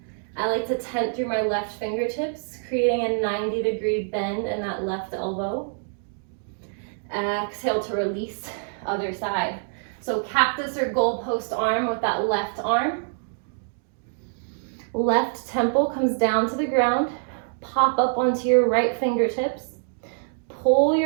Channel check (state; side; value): silent; left; digital silence